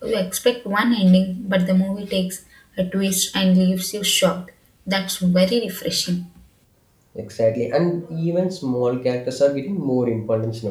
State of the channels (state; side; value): identical; both; correlation 1.00